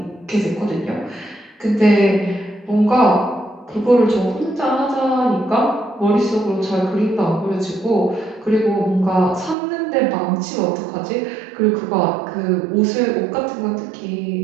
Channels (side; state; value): left; drops out; at 9.6 s